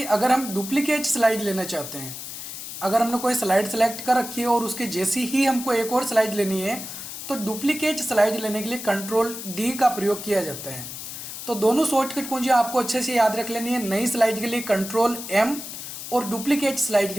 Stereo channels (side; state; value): left; noise; hiss, 9 dB below the sound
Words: अगर हम डुप्लीकेट स्लाइड लेना चाहते हैं, अगर हमने कोई स्लाइड सेलेक्ट कर रखी है और उसके जैसी ही हमको एक और स्लाइड लेनी है, तो डुप्लीकेट स्लाइड लेने के लिए कंट्रोल D का प्रयोग किया जाता है। तो दोनों शॉर्टकट कुंजी आपको अच्छे से याद रख लेनी है। नई स्लाइड के लिए कंट्रोल+M और डुप्लीकेट स्लाइड